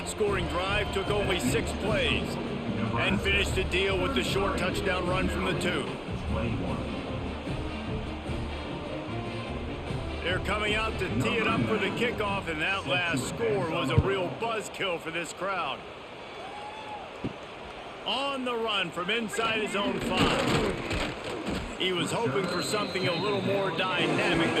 scoring drive took only 6 plays and finished the deal with the short touchdown run from the 2. They're coming out to tee it up for the kickoff, and that last score was a real buzzkill for this crowd. On the run from inside his own 5. He was hoping for something a little more dynamic,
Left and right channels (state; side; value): identical; both; correlation 1.00